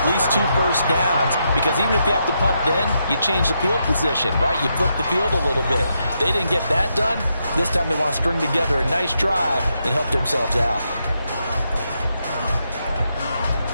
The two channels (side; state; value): both; inverted; correlation -0.82